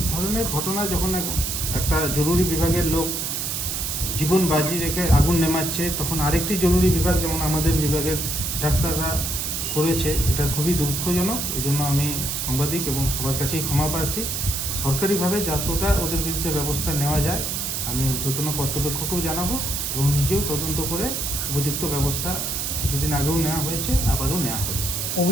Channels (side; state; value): right; noise; hiss, 2 dB below the sound